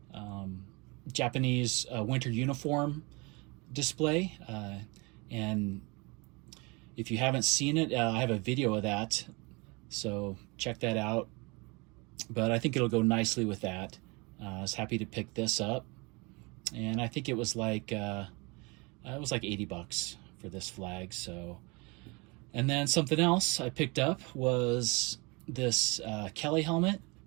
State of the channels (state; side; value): quieter; left; 27.9 dB